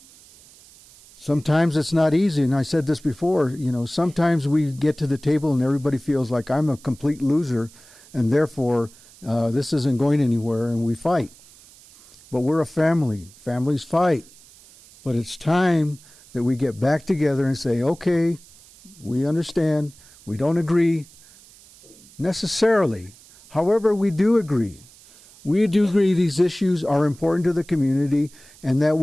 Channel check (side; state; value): right; noise; hiss, 24 dB below the sound